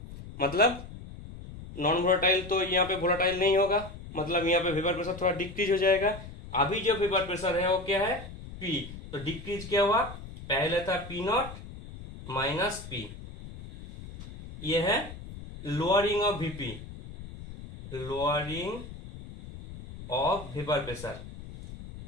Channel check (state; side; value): noise; left; rumble, 13 dB below the sound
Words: मतलब नॉन वोलाटाइल तो यहाँ पे वोलाटाइल नहीं होगा, मतलब यहाँ पे वेपर प्रेशर थोड़ा डिक्रीज हो जाएगा। अभी जो वेपर प्रेशर है वो क्या है? P। तो डिक्रीज क्या हुआ? पहले था P नॉट माइनस P। ये है lowering of VP, lowering of vapour pressure.